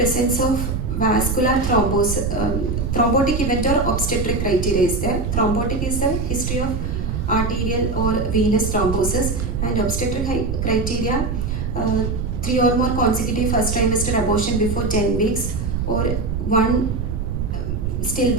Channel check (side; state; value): right; noise; rumble, 2 dB below the sound